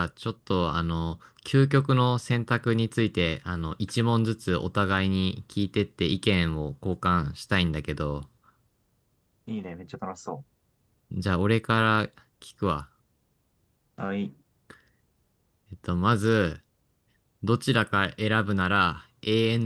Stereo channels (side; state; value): both; identical; correlation 1.00